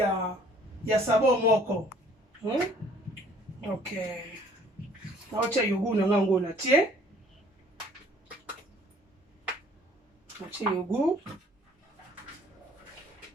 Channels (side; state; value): both; normal; correlation 0.57